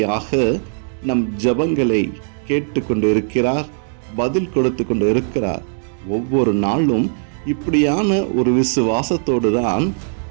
நம் ஜெபங்களை கேட்டு கொண்டு இருக்கிறார், பதில் கொடுத்து கொண்டு இருக்கிறார். ஒவ்வொரு நாளும் இப்படியான ஒரு விசுவாசத்தோடு தான்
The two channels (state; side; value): silent; left; digital silence